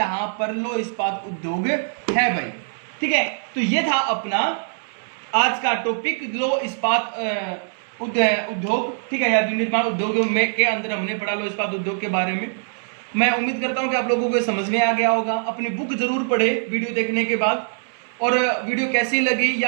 पर लौह इस्पात उद्योग है भाई। ठीक है, तो ये था अपना आज का टॉपिक लौह इस्पात उद्योग। ठीक है, या विनिर्माण उद्योग में के अंदर हमने पढ़ा लौह इस्पात उद्योग के बारे में। मैं उम्मीद करता हूं कि आप लोगों को समझ में आ गया होगा। अपनी बुक जरूर पढ़े वीडियो देखने के बाद, और वीडियो कैसी लगी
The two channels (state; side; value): silent; left; 64 dB below the other